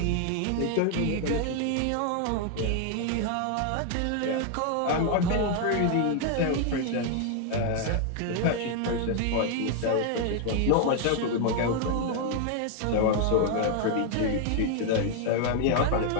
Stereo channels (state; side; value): different; both; correlation 0.00